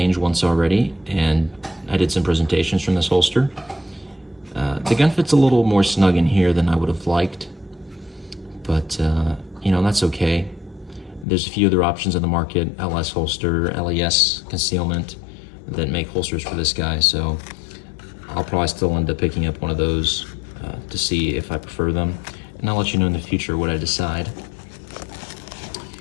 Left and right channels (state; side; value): drops out; right; at 11.2 s